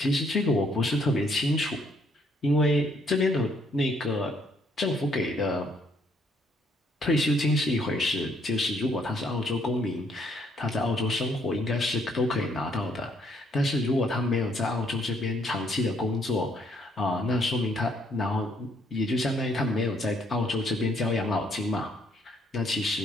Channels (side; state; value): both; normal; correlation 0.69